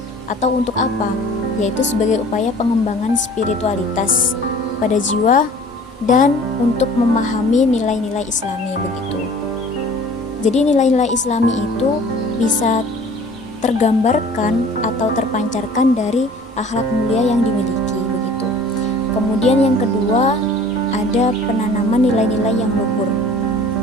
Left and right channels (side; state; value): both; normal; correlation 0.48